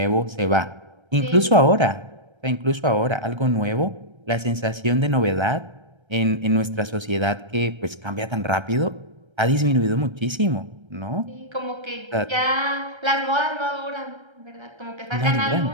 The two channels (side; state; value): left; late; 1.3 ms